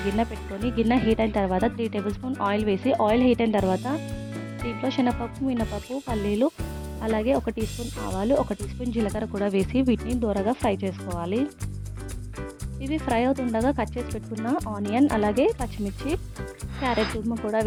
గిన్నె పెట్టుకొని, గిన్నె హీట్ అయిన తర్వాత 3 టేబుల్ స్పూన్ ఆయిల్ వేసి, ఆయిల్ హీట్ అయిన తర్వాత దీంట్లో శనగపప్పు, మినపప్పు, పల్లీలు, అలాగే 1 టీ స్పూన్ ఆవాలు, 1 టీ స్పూన్ జీలకర్ర కూడా వేసి వీటిని దూరగా ఫ్రై చేసుకోవాలి. ఇవి ఫ్రై అవుతుండగా కట్ చేసి పెట్టుకున్న ఆనియన్, అలాగే పచ్చిమిర్చి, క్యారెట్ తురుము కూడా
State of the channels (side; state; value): both; identical; correlation 1.00